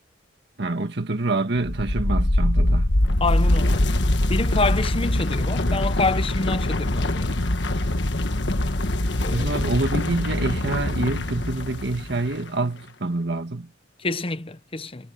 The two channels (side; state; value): both; normal; correlation 0.72